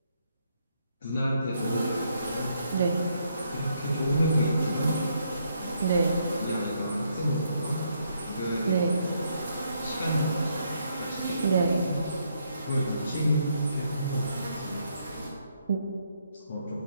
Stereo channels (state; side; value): inverted; both; correlation -0.74